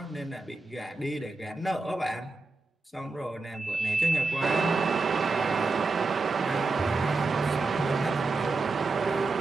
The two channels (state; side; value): quieter; left; 3.6 dB